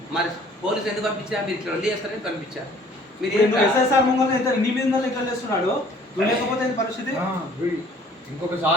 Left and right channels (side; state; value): both; normal; correlation 0.55